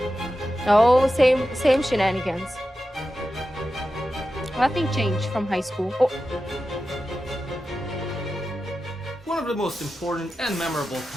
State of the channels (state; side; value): normal; both; correlation 0.92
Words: Oh, same shenanigans. Nothing changed from high school. Oh, One of the most important and memorable